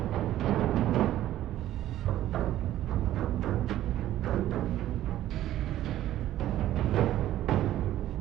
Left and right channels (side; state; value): left; quieter; 13.3 dB